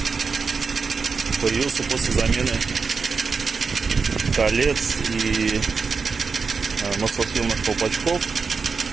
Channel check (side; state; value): left; quieter; 5.0 dB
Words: Появился после замены колец и маслосъемных колпачков